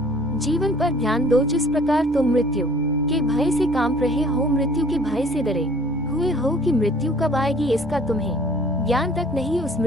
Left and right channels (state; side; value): normal; both; correlation 0.53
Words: जीवन पर ध्यान दो जिस प्रकार तुम मृत्यु के भय से कांप रहे हो, मृत्यु के भय से डरे हुए हो कि मृत्यु कब आएगी इसका तुम्हें ज्ञान तक नहीं। उस